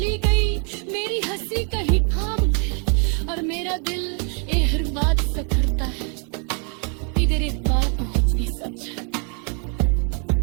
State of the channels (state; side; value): quieter; left; 39.6 dB